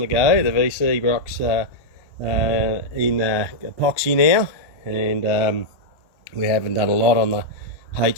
go. The VC rock's in epoxy now, and we haven't done a lot on the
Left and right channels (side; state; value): right; late; 1.2 ms